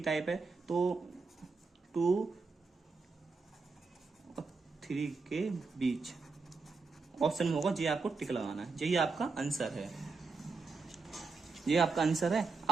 टाइप है। तो 2 और 3 के बीच ऑप्शन में होगा, ये आपको टिक लगाना है, यही आपका आंसर है, ये आपका आंसर है।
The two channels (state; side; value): quieter; left; 4.3 dB